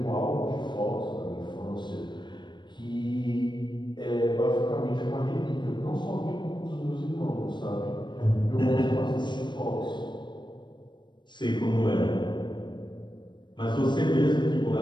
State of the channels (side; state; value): right; late; 0.22 ms